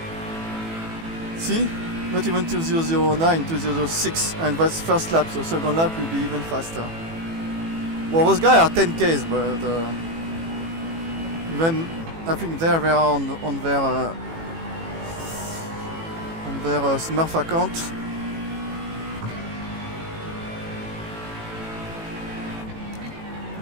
See? Not even 2009, 2006, and that's first lap, so second lap will be even faster. Well, those guys are 10Ks, but even I think they are on their Smurf account.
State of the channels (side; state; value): left; late; 18 ms